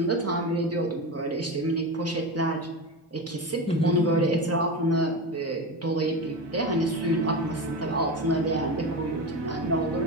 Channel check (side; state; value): both; normal; correlation 0.22